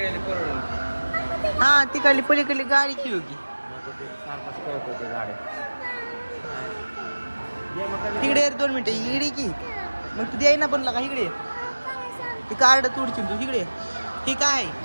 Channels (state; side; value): inverted; both; correlation -1.00